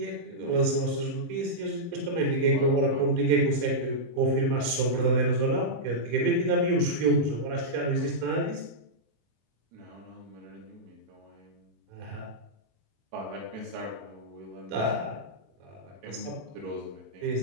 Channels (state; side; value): late; left; 24 ms